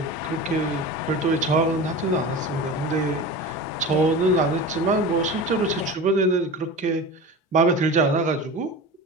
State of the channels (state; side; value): normal; both; correlation 0.31